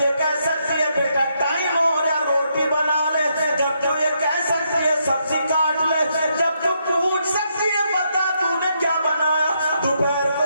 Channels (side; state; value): both; inverted; correlation -0.77